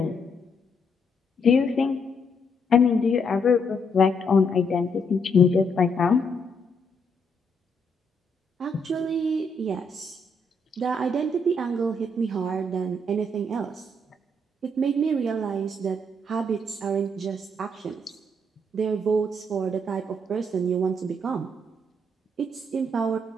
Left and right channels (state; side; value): normal; both; correlation 0.74